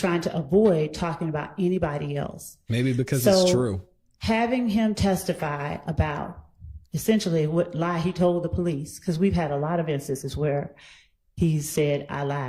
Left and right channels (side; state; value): both; identical; correlation 1.00